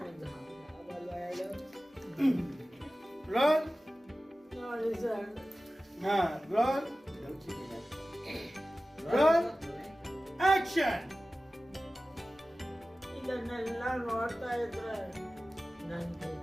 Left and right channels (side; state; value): both; normal; correlation 0.96